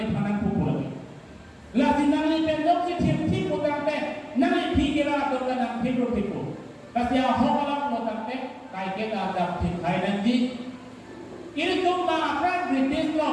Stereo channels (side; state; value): both; identical; correlation 1.00